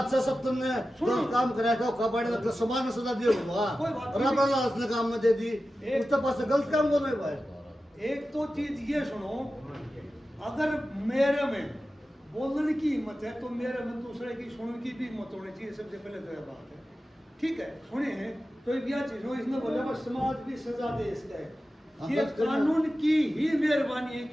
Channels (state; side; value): normal; both; correlation 0.94